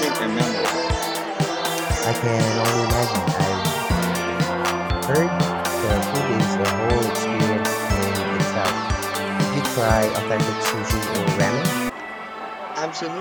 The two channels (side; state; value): both; identical; correlation 1.00